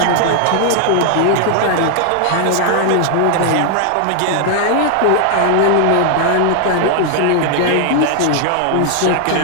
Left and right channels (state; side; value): different; both; correlation 0.00